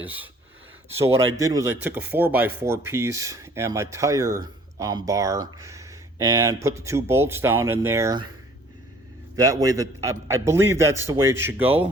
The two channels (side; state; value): both; normal; correlation 0.54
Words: So what I did was I took a 4x4 piece and my tire bar and put the 2 bolts down in there. That way, that I believe that's the way it should